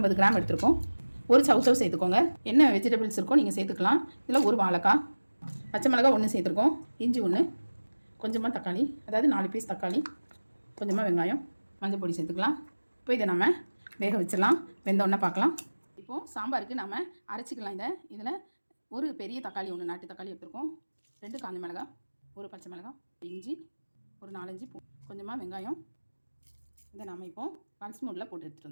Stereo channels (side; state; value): both; inverted; correlation -1.00